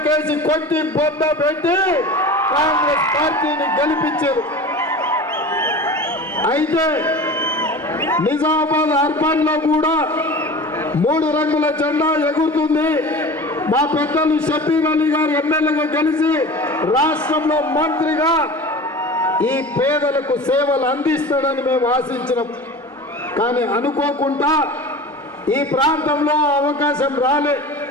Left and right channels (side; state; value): both; normal; correlation 0.35